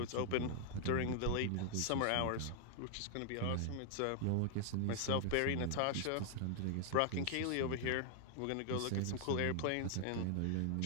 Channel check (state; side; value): different; both; correlation 0.00